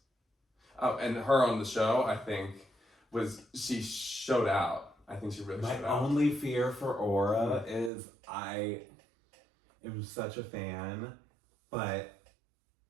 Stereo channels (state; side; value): drops out; left; at 7.9 s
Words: Oh, and her on the show, I think, she showed out. I think she really showed out. My only fear for Aura is I am such a fan, but